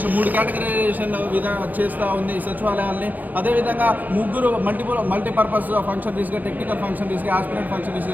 3 కేటగరైజేషన్ చేస్తూ ఉంది ఈ సచివాలయాల్ని. అదేవిధంగా ముగ్గురు మల్టీపర్పస్ ఫంక్షనరీస్గా, టెక్నికల్ ఫంక్షనరీస్గా, ఆస్పిరెంట్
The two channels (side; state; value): left; late; 0.083 ms